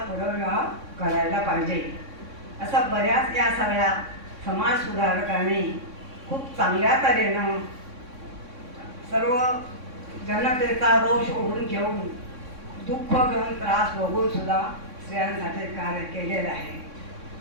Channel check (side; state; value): left; late; 3.6 ms